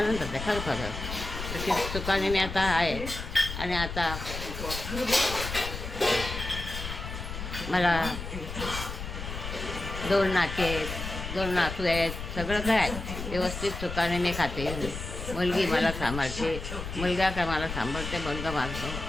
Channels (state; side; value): noise; left; rumble, 7 dB below the sound